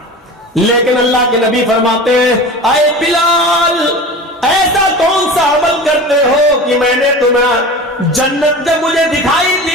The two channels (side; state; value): both; normal; correlation 0.34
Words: لیکن اللہ کے نبی فرماتے ہیں, اے بلال, ایسا کون سا عمل کرتے ہو کہ میں نے تمہیں جنت, جب مجھے دکھائی